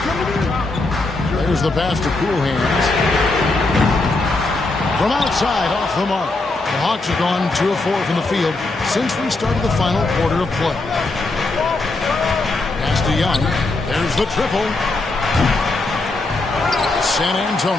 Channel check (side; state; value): right; quieter; 3.2 dB